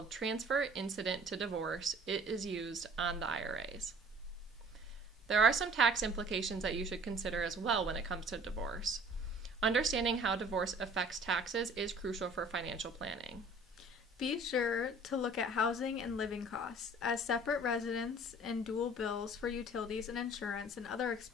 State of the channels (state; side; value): normal; both; correlation 0.50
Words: transfer incident to divorce is used on the IRAs. There are some tax implications that you should consider as well when it comes to divorce. Understanding how divorce affects taxes is crucial for financial planning. Be sure to look at housing and living costs, as separate residence and dual bills for utilities and insurance and other